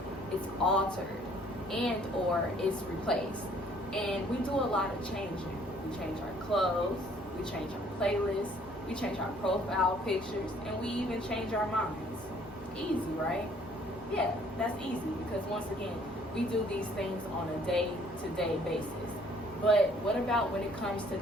it's altered, and or it's replaced. And we do a lot of changing. We change our clothes, we change our playlists, we change our profile pictures, and we even change our minds. Easy, right? Yeah, that's easy because once again, we do these things on a day-to-day basis. But what about when it comes to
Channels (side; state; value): both; normal; correlation 0.60